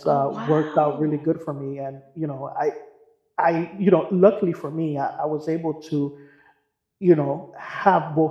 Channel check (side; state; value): both; identical; correlation 1.00